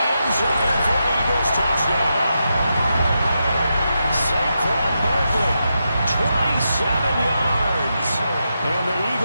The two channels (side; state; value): both; inverted; correlation -0.86